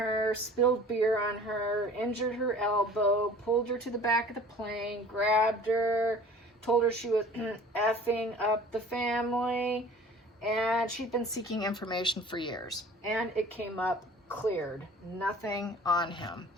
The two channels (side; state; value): both; normal; correlation 0.46